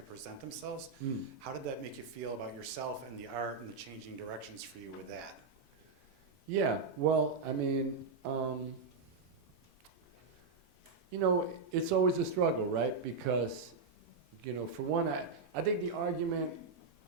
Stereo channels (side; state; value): left; quieter; 4.4 dB